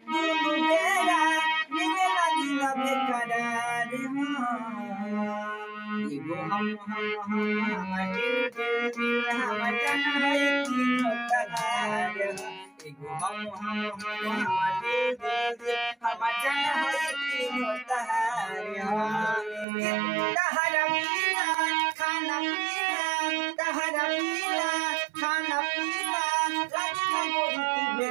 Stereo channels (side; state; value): left; drops out; at 19.7 s